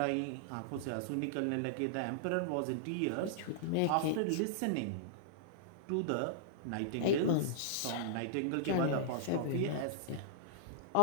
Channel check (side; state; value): both; different; correlation -0.02